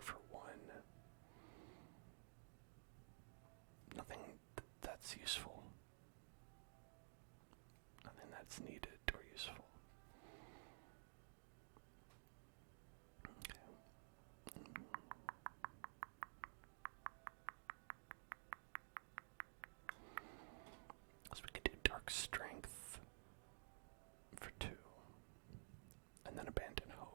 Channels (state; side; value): silent; left; digital silence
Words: for 1? Nothing that's useful. Nothing that's needed or useful. Okay. So we could do dark strength for 2. And then abandon